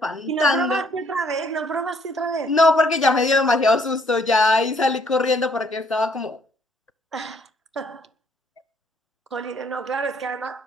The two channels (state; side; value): normal; both; correlation 0.65